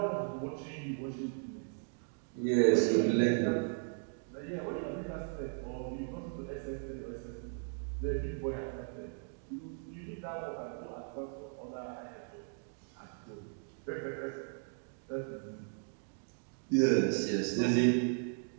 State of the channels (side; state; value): left; silent; 53 dB below the other